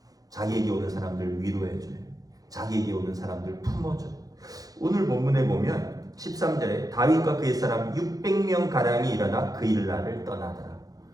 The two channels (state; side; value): late; left; 0.18 ms